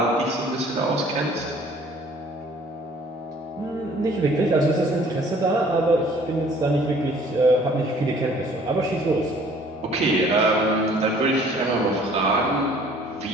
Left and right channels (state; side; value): normal; both; correlation 0.55